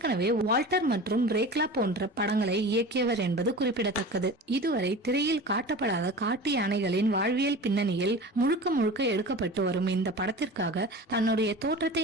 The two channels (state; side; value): normal; both; correlation 0.35